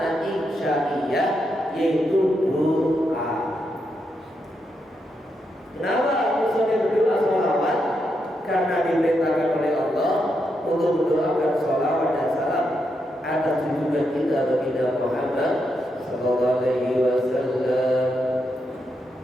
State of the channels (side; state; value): both; normal; correlation 0.82